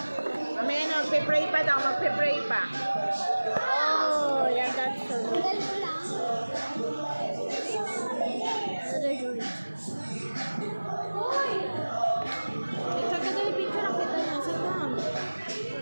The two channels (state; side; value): inverted; both; correlation -1.00